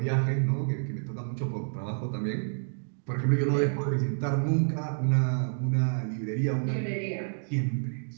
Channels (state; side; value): silent; left; digital silence